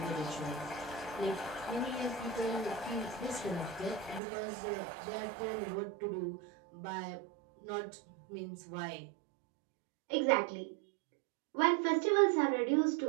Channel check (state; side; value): drops out; left; at 4.2 s